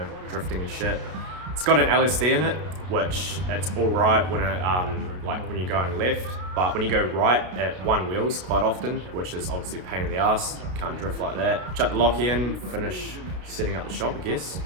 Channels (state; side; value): late; left; 32 ms